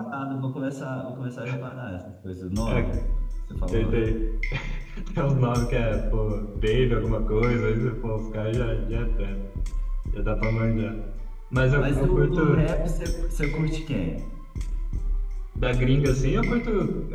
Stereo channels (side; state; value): both; identical; correlation 1.00